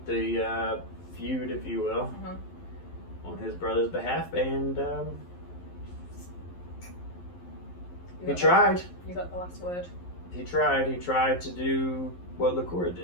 the feud, if you will, on his brother's behalf. And he tried. You got the last word. He tried. He tried to do what Korey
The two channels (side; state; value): right; late; 11 ms